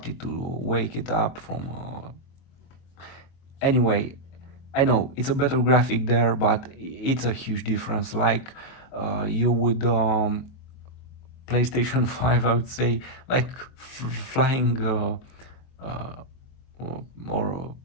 it to wake it up from. Anyway, I know it's a better graphic there, but it's a huge difference. Like you would PlayStation 5, I would say, like flying uh, or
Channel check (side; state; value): right; late; 23 ms